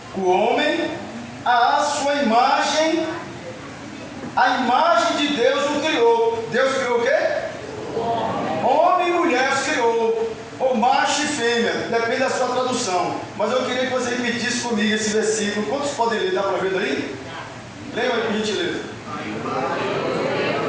o homem à sua imagem. A imagem de Deus o criou. Deus criou o quê? Homem e mulher os criou. Ou macho e fêmea, depende da sua tradução. Mas eu queria que você repetisse comigo esse versículo. Quantos podem ler? Dá para ver daí? Leia aí, por gentileza.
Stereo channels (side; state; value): both; identical; correlation 1.00